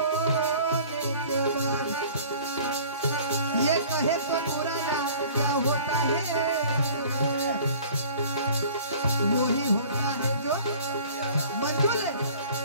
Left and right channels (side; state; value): both; inverted; correlation -0.48